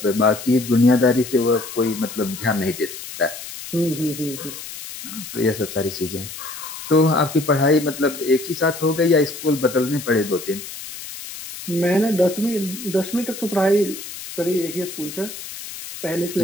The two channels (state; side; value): noise; left; hiss, 11 dB below the sound